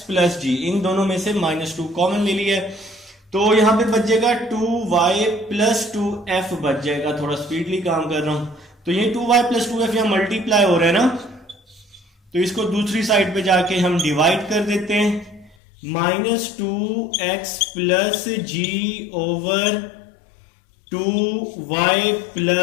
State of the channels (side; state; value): right; drops out; at 15.6 s